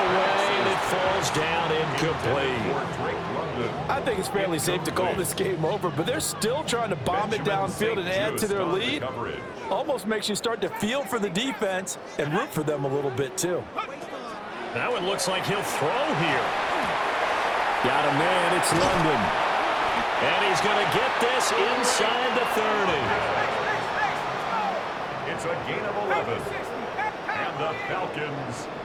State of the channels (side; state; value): both; identical; correlation 1.00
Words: and it falls down incomplete. I think it's fairly safe to call this game over, but they're still trying to bomb it downfield and add to their lead. Almost makes you start to feel for the defense and root for them a little bit, too. That one looks like he'll throw here. Got a man, it's London. And he's going to get this inside the 30. It's a gain of 11. And the Falcons,